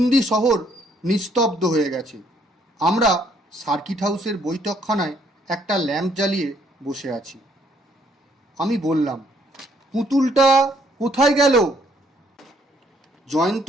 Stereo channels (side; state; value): both; normal; correlation 0.67